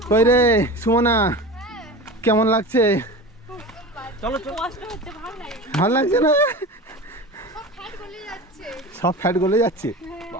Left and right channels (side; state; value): both; normal; correlation 0.31